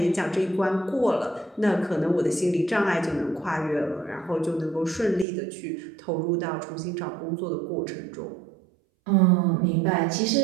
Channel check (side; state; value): left; drops out; at 5.2 s